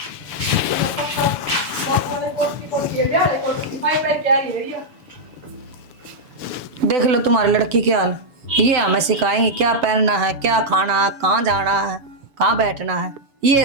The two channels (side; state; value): left; late; 7.0 ms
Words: देख लो तुम्हारी लड़की के हाल, ये हमें सिखाएंगे क्या पहनना है, क्या खाना है, कहाँ जाना है, कहाँ बैठना है। ये